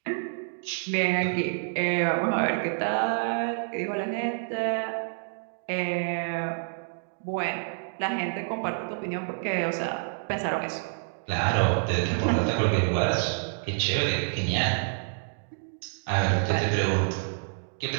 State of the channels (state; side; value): silent; left; digital silence